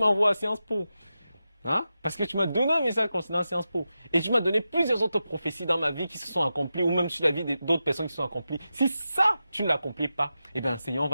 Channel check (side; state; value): both; inverted; correlation -0.91